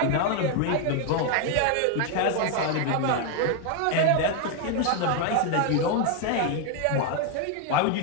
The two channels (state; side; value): different; both; correlation 0.01